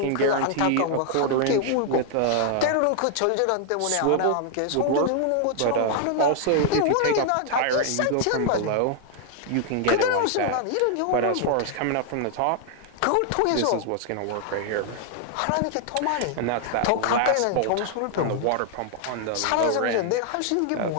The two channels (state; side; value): different; both; correlation 0.00